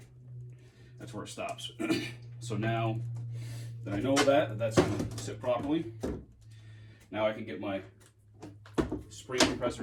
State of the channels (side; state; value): both; identical; correlation 1.00